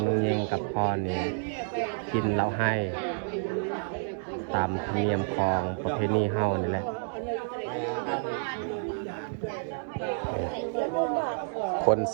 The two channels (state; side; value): silent; left; 58 dB below the other